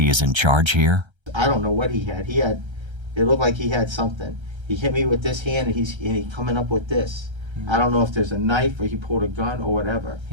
is in charge here? I don't know what he had. It looked like he had something. He hit me with this hand, and he's coming up with this. I don't know if there's a knife or he pulled a gun or whatever.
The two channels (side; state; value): left; late; 1.3 ms